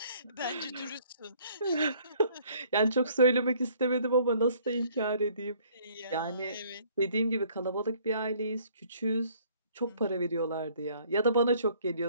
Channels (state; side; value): inverted; both; correlation -0.59